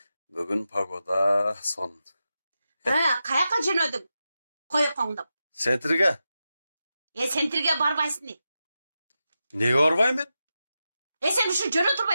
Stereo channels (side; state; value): both; inverted; correlation -0.90